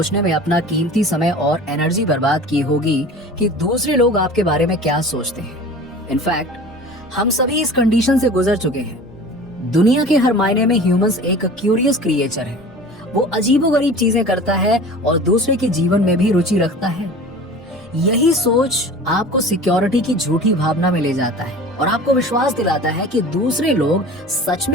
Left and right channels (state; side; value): normal; both; correlation 0.40